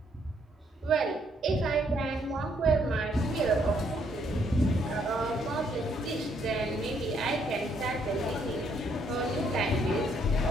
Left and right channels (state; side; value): normal; both; correlation 0.70